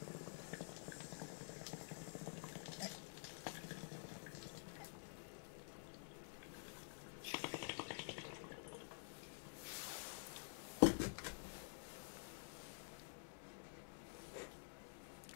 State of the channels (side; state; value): right; silent; digital silence